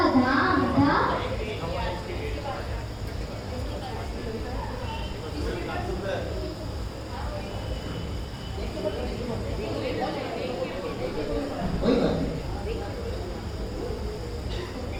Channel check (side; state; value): both; identical; correlation 1.00